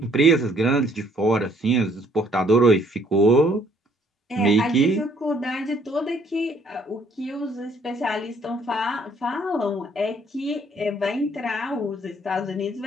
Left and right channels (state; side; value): normal; both; correlation 0.63